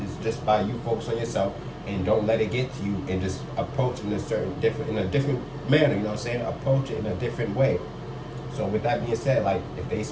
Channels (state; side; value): identical; both; correlation 1.00